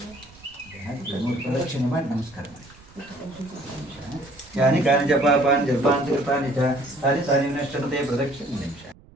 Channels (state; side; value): noise; right; rumble, 25 dB below the sound